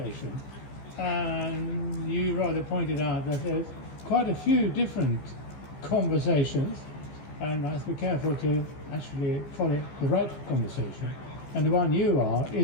And you rather pointed out that there's quite a few different conversations, and I have to be careful to actually follow the right conversation. And the one you are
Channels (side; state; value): right; late; 15 ms